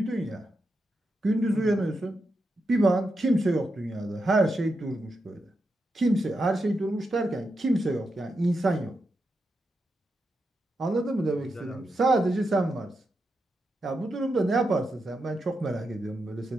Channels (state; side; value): normal; both; correlation 0.86